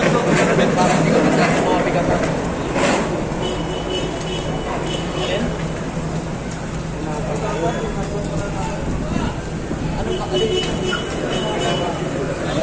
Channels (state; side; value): identical; both; correlation 1.00